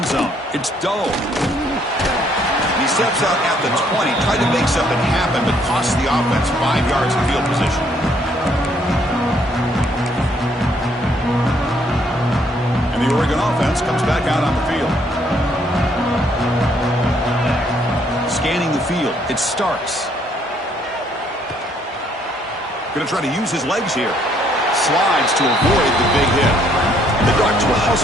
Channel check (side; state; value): both; normal; correlation 0.67